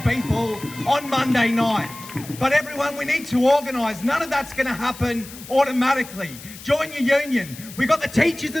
people on Monday night. But everyone, we need to organise. None of that's going to happen automatically. Join your union. We've got the teachers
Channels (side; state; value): left; noise; hiss, 16 dB below the sound